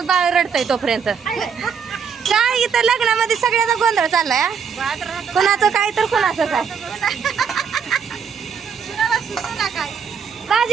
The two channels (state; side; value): quieter; left; 6.6 dB